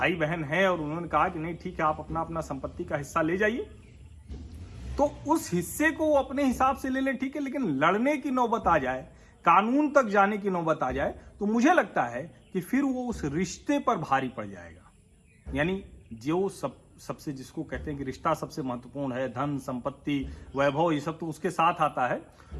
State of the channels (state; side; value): identical; both; correlation 1.00